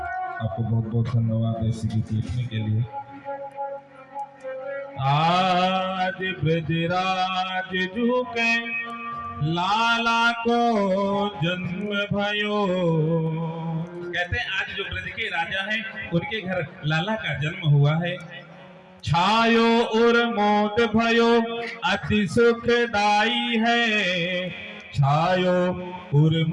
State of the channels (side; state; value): both; identical; correlation 1.00